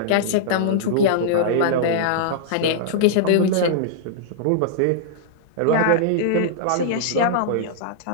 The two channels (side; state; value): both; different; correlation -0.02